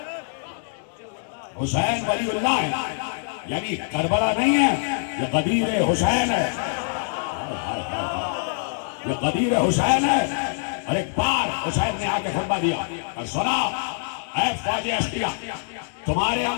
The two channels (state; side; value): silent; right; digital silence